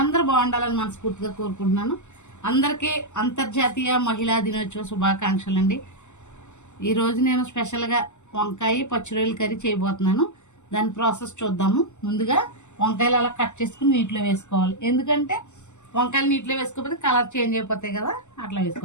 బాగుండాలని మనస్ఫూర్తిగా కోరుకుంటున్నాను. అందరికీ అంతర్జాతీయ మహిళా దినోత్సవ శుభాకాంక్షలు అండి. ఈరోజు నేను స్పెషల్గా వంకాయ పచ్చిరొయ్యల కర్రీ చేయబోతున్నాను. దాని ప్రాసెస్ చూద్దాము. ముందుగా వంకాయలు అలా కట్ చేసుకుని నీటిలో వేసుకోవాలి. ఎందుకంటే వంకాయలు నీటిలో వేసుకోకపోతే కలర్ చేంజ్ అయిపోతాయి కదా, అట్లా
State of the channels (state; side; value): late; right; 0.84 ms